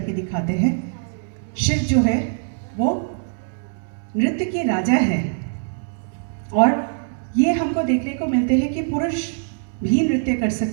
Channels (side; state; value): left; silent; digital silence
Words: दिखाते हैं। शिव जो है वो नृत्य के राजा है, और ये हमको देखने को मिलते हैं कि पुरुष भी नृत्य कर